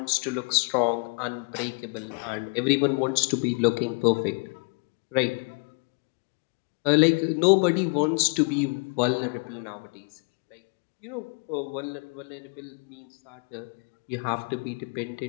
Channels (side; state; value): right; quieter; 33.8 dB